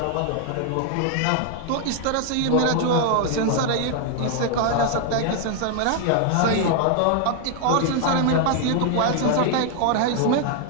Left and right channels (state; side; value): different; both; correlation 0.00